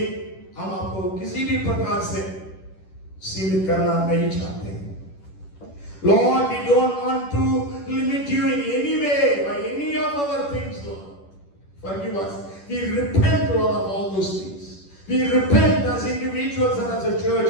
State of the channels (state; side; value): late; right; 10 ms